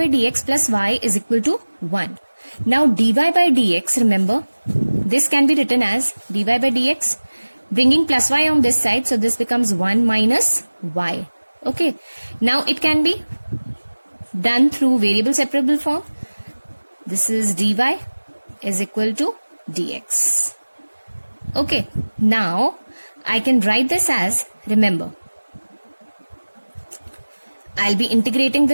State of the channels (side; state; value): both; inverted; correlation -1.00